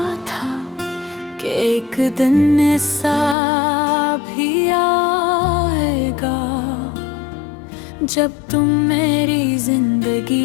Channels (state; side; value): drops out; right; at 3.4 s